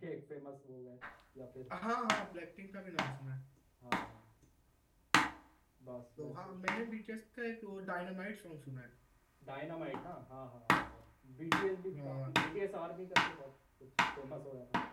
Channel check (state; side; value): identical; both; correlation 1.00